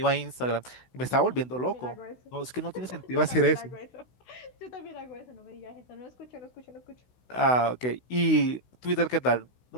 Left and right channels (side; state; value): right; late; 16 ms